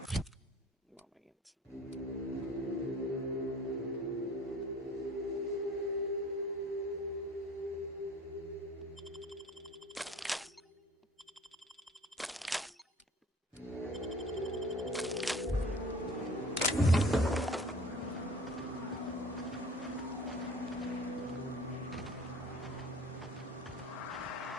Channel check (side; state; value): both; normal; correlation 0.47